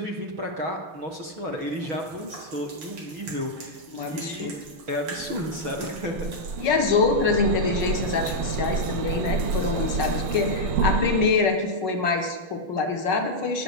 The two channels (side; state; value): left; late; 6.5 ms